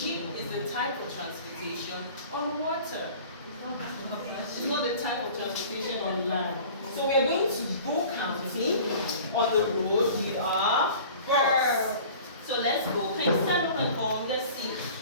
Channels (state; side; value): inverted; both; correlation -0.44